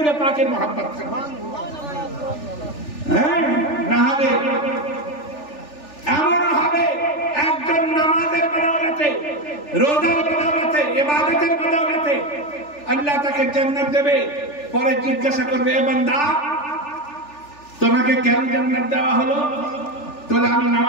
পাকের মহব্বত থাকবে। হ্যাঁ, না হলে এমন হবে একজন নামাজের বদৌলতে, রোজার বদৌলতে, ইবাদতের বদৌলতে আল্লাহ তাকে জান্নাত দেবে। পরে জিজ্ঞাসা করবে, এ বান্দা তোমাকে কেন জান্নাত দেওয়া হলো? তোলে আমি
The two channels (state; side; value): late; right; 3.4 ms